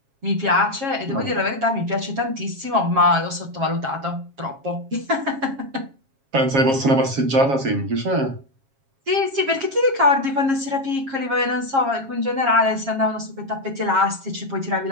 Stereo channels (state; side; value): late; left; 7.4 ms